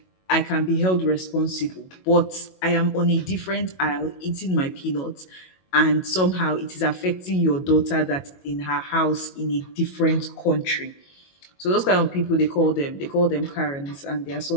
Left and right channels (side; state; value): right; late; 22 ms